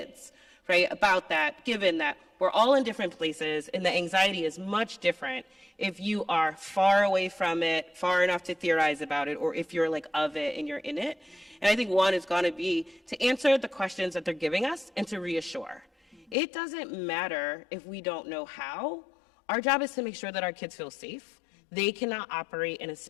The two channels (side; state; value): right; drops out; at 16.4 s